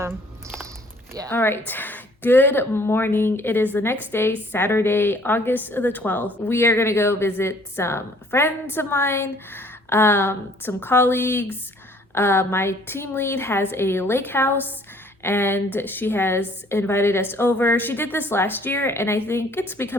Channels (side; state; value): both; normal; correlation 0.58